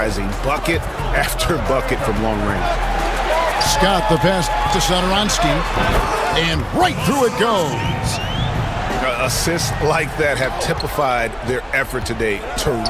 Bucket after bucket from long range. Scott the pass to Satoransky. And right through it goes. Assists like that have typified their effort today.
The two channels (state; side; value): identical; both; correlation 1.00